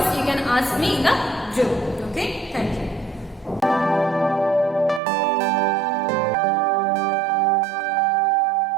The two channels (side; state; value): left; drops out; at 5.0 s